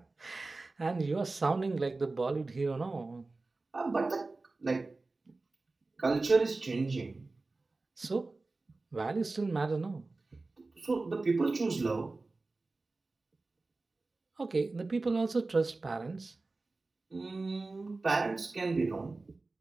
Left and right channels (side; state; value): left; quieter; 3.5 dB